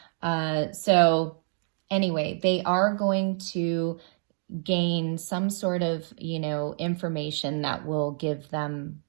So anyway, they are going to gain some sort of, you know, information that will give them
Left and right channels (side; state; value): left; silent; digital silence